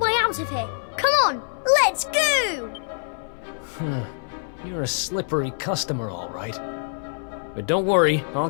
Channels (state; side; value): silent; right; 59 dB below the other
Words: out of here. Come on, let's go! You're a slippery customer, all right. But don't worry, I'll